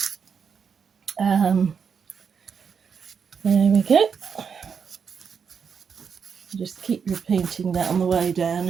There we go. Just keep repeating that on the way down,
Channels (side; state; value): left; quieter; 6.5 dB